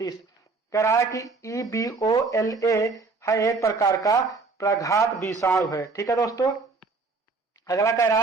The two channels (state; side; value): quieter; left; 4.0 dB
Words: कह रहा है कि EBOLA है एक प्रकार का प्रघात विषाणु है। ठीक है दोस्तों। अगला कह